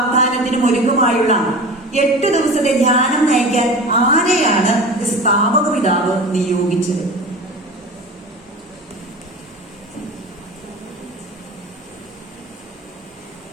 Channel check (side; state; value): both; normal; correlation 0.33